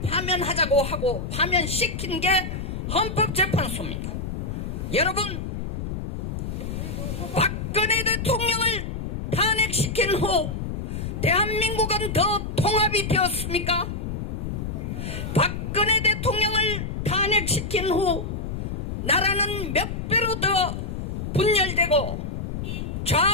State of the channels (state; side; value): noise; left; rumble, 4 dB below the sound